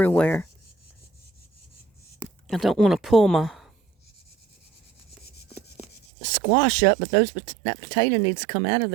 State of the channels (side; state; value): left; drops out; at 6.1 s